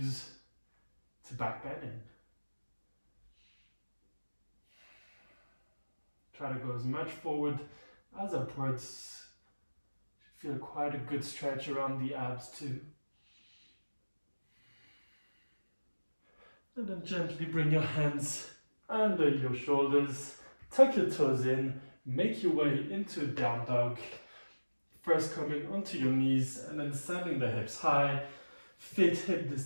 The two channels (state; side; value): inverted; both; correlation -1.00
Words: to back bending. Try to go as much forward as upwards. Feel quite a good stretch around the abs too. And then gently bring your hands under your shoulders, tuck your toes in, make your way into down dog. First coming onto your knees and then sending the hips high, feet hip